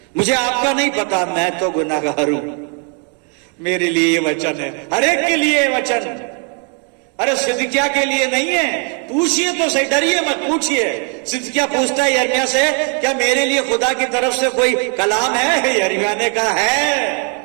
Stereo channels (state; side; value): quieter; left; 39.1 dB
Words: मुझे आपका नहीं पता, मैं तो गुनाहगार हूं, मेरे लिए ये वचन है, हर एक के लिए ये वचन। अरे सिदकिय्याह के लिए नहीं है, पूछिए तो सही, डरिए मत, पूछिए। सिदकिय्याह पूछता है यिर्मयाह से, क्या मेरे लिए खुदा की तरफ से कोई कलाम है? यिर्मयाह ने कहा